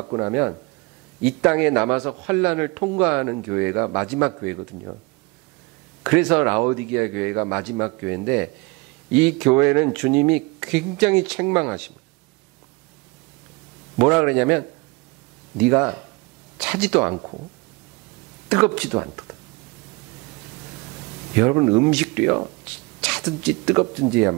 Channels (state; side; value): quieter; left; 25.7 dB